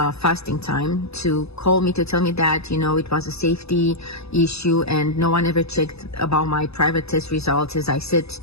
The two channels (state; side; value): late; right; 0.79 ms